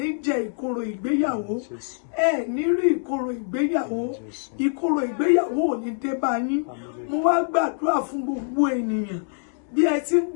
jẹ ìkorò ìgbéyàwó ẹ ní rí ìkorò ìgbéyàwó ìkorò ìgbéyàwó ò ní dé bá yín mo wá gbàdúrà fún gbogbo ènìyàn bí ẹ ti ń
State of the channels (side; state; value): right; silent; digital silence